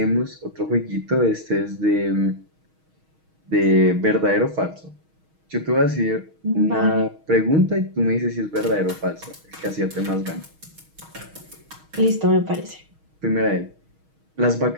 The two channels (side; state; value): left; late; 6.3 ms